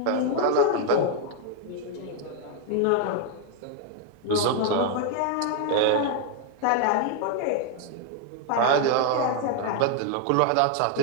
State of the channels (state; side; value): different; both; correlation 0.01